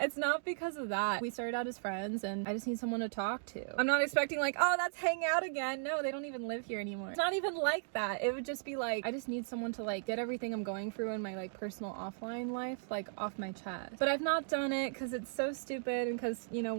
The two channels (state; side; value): silent; left; digital silence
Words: It's not because of that. We started out as friends and I just need someone to talk to. I'm not expecting like, oh, let's hang out again. No, they don't even live here anymore. It's not even like that. It would just be like, I just need someone to like get everything I'm going through in my like personal offline life like off my chest. But I've not done it because it's so stupid, and because, you know,